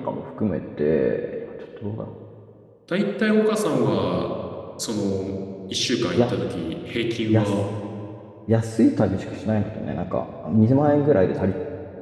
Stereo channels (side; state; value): both; identical; correlation 1.00